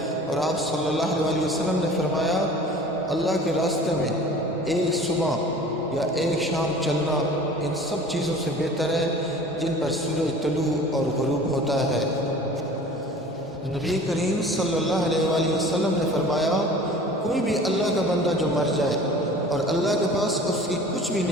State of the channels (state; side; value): normal; both; correlation 0.44